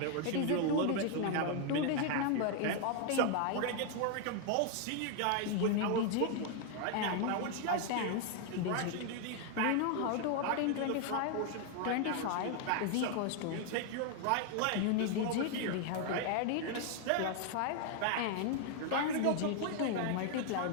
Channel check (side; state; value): both; different; correlation 0.00